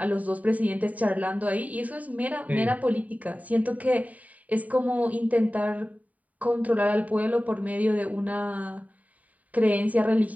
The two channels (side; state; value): left; late; 0.072 ms